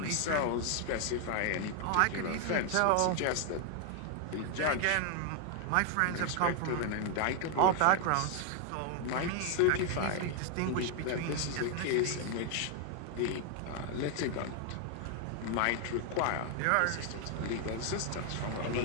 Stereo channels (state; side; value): different; both; correlation 0.00